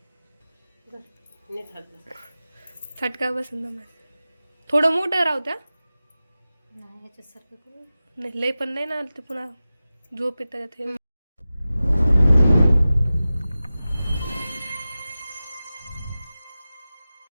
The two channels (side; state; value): both; inverted; correlation -0.96